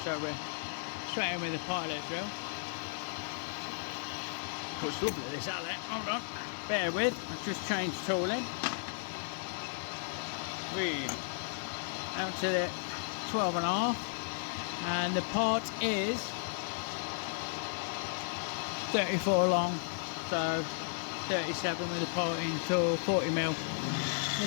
so we're straight in with the pilot drill. Looks lovely this outlet. Hold on. Bear with, I've just changed tooling. Read. Out to the 12.5, and the part is 34 long, so 37 with the piloting tool, 40mm.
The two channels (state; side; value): silent; right; digital silence